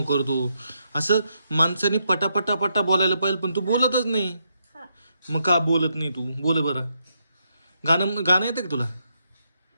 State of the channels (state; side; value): inverted; both; correlation -0.80